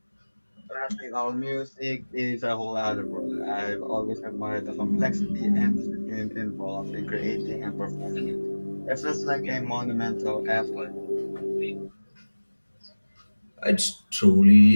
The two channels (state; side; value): inverted; both; correlation -1.00